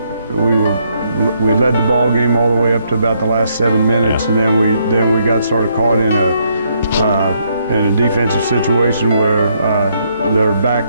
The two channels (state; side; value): inverted; both; correlation -0.73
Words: we led the ball game all the way up to about the last 7 minutes, and then we got sort of caught in a defensive situation where their